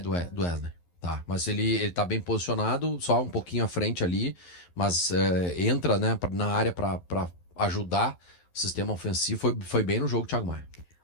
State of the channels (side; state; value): right; late; 11 ms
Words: Wesley. Tá, mas ele tá bem posicionado, só um pouquinho à frente ali, mas entra, né, na área para ajudar o sistema ofensivo. Foi bem no jogo, Thiago Maia.